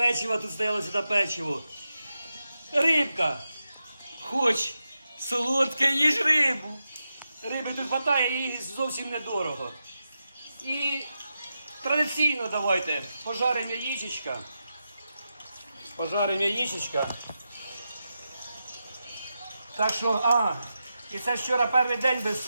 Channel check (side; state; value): both; inverted; correlation -0.89